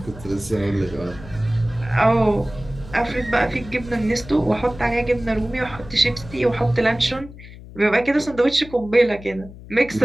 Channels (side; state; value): left; noise; hum, 17 dB below the sound